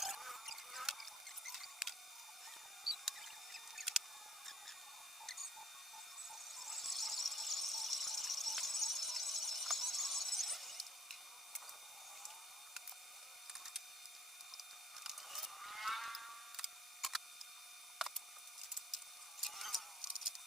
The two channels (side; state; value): both; normal; correlation 0.54